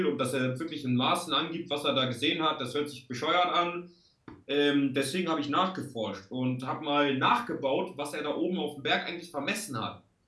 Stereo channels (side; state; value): both; identical; correlation 1.00